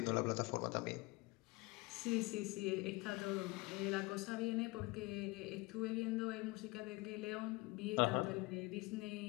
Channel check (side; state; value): right; quieter; 23.8 dB